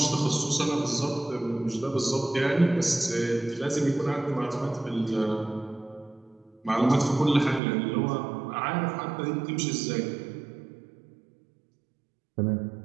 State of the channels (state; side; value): drops out; left; at 7.6 s